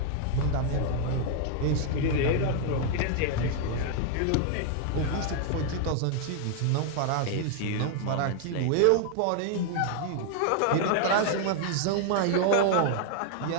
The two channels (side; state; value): both; different; correlation 0.00